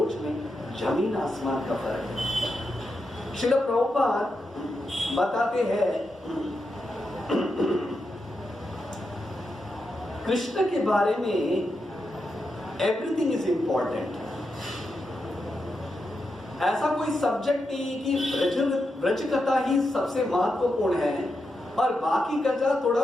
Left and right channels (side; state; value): both; normal; correlation 0.86